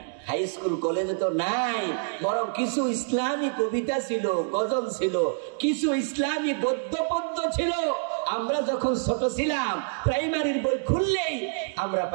হাই স্কুল কলেজে তো নাই, বরং কিছু ইসলামী কবিতা ছিল, গজল ছিল, কিছু ইসলামী গদ্য পদ্য ছিল। আমরা যখন ছোট ছিলাম, প্রাইমারির বই খুললেই আমরা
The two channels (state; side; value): silent; left; digital silence